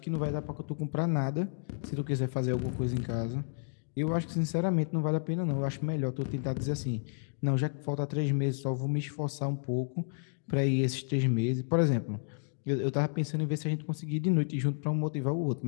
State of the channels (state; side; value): silent; right; digital silence